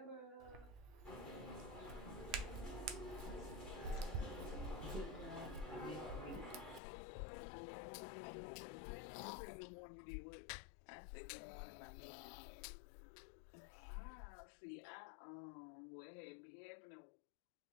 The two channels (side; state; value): right; drops out; at 6.8 s